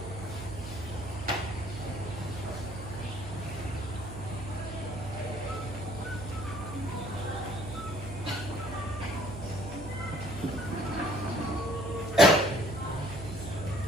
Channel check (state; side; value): noise; right; hum, 10 dB below the sound